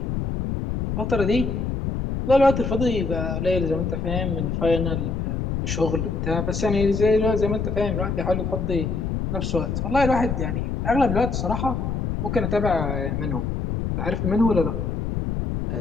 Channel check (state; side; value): noise; left; rumble, 2 dB below the sound